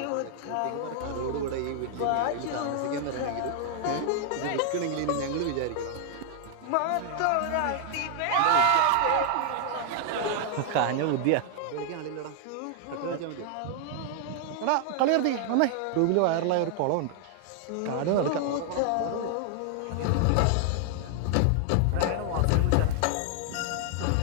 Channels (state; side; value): different; both; correlation 0.00